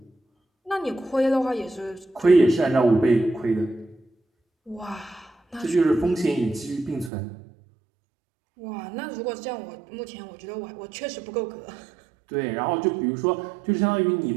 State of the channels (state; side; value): drops out; left; at 7.1 s